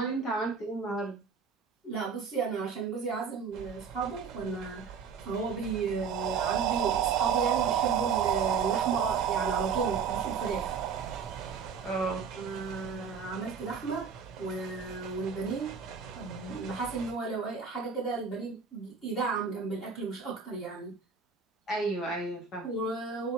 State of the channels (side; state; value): left; quieter; 5.9 dB